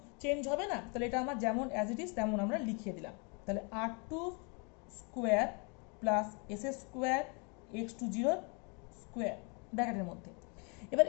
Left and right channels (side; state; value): right; quieter; 34.3 dB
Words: চেঞ্জ হবে না, তাহলে এটা আমার যেমন অ্যাজ ইট ইজ তেমন আমরা লিখিয়ে দিলাম, তাহলে R two square plus S square X two zero square ব্র্যাকেটের মধ্যে। এবার